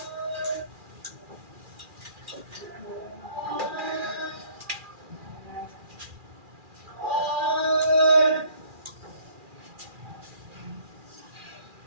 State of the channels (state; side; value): late; left; 2.4 ms